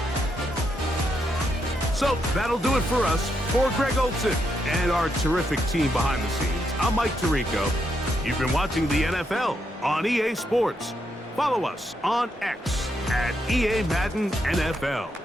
So that'll do it for us. For Greg Olson and our terrific team behind the scenes, I'm Mike Tirico. You've been watching the NFL on EA Sports. Follow us on X at EA Madden NFL.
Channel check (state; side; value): normal; both; correlation 0.80